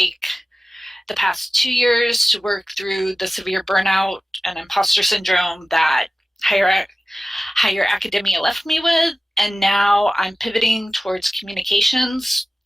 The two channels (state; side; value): normal; both; correlation 0.96